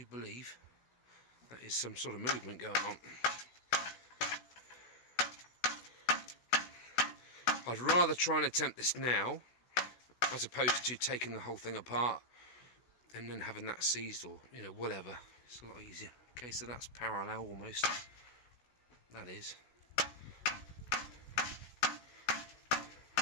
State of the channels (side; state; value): right; late; 16 ms